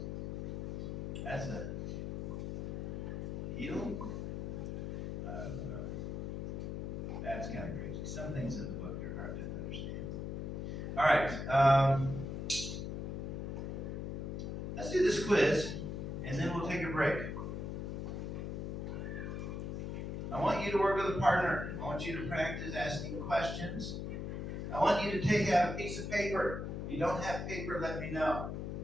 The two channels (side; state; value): left; noise; hum, 4 dB below the sound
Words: That's a heel. That's kind of crazy. Some things in the book are hard to understand. All right. Let's do this quiz, and then we'll take a break. I want you to work with a partner. I want you to practice asking questions. I want you to take out a piece of paper. If you don't have paper, let me know.